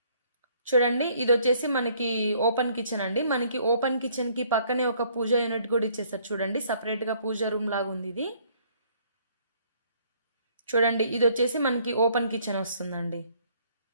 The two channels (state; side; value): inverted; both; correlation -0.63